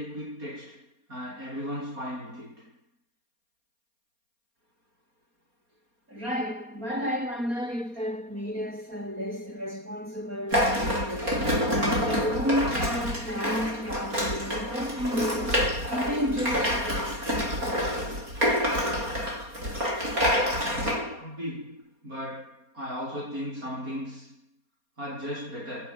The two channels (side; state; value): left; late; 4.3 ms